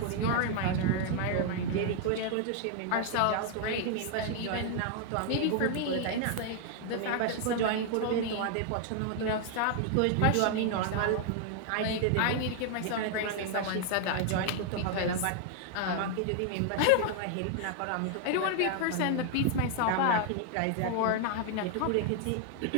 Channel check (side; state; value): both; different; correlation 0.00